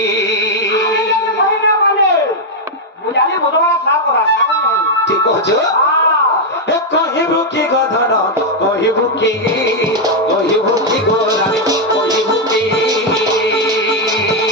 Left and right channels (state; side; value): normal; both; correlation 0.00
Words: ঠিক কছ কহিব কি গো ধন কহিব কি গো রানী কহিব কি